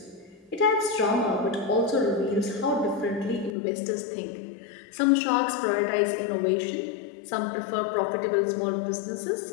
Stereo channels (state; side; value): drops out; right; at 3.5 s